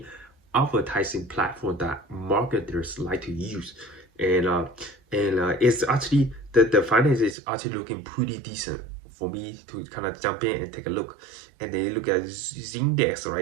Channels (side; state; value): left; drops out; at 7.4 s